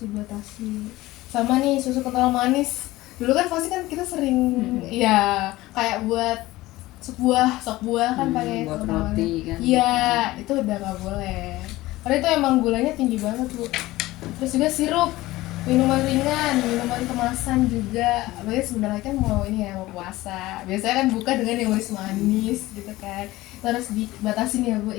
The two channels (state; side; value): quieter; right; 18.0 dB